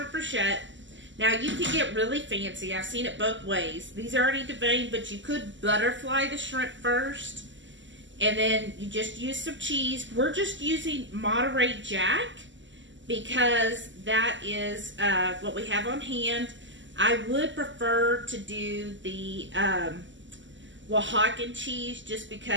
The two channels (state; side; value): late; left; 0.54 ms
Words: brochette, now you can get really fancy. I've seen it both ways. These are already deveined, but you could butterfly the shrimp first. And then you just use some cheese. We're just using Monterey Jack because that is what we have on hand. I would prefer to do the Oaxacan cheese just